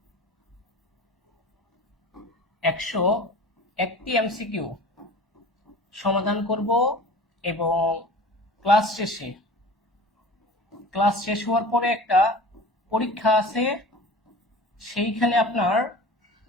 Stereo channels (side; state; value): both; normal; correlation 0.39